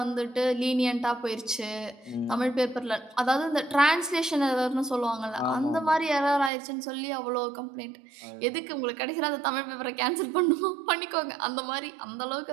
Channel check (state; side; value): drops out; left; at 6.5 s